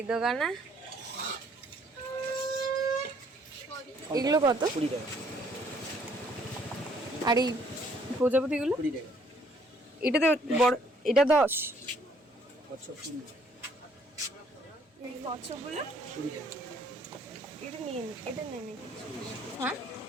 দোকানে? এগুলো কত? 20 টাকা। আর এই প্রজাপতিগুলো? 20 টাকা। এটাতে বড়, এটা 10। কচ্ছপ 20 এই কচ্ছপগুলো? 20 টাকা। এটা নিয়ে নি, এটা নিয়ে নি। হ্যাঁ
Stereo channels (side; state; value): both; normal; correlation 0.64